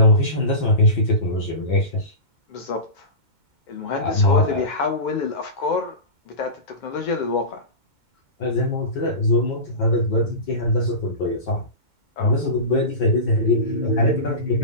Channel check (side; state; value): right; late; 2.2 ms